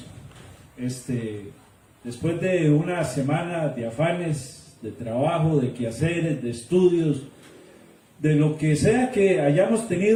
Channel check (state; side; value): identical; both; correlation 1.00